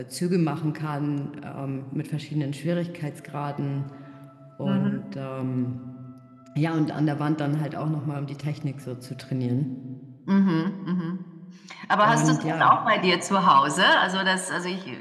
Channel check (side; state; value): both; identical; correlation 1.00